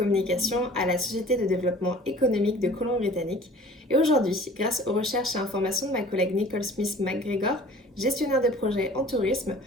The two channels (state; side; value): normal; both; correlation 0.47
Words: à la Société de développement économique de Colombie-Britannique. Et aujourd'hui, grâce aux recherches et informations de ma collègue Nicole Smith-McGregor, gestionnaire de projet en tourisme,